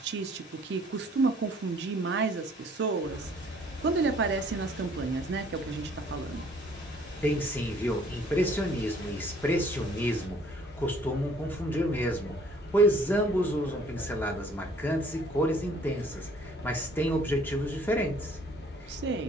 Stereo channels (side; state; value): both; normal; correlation 0.58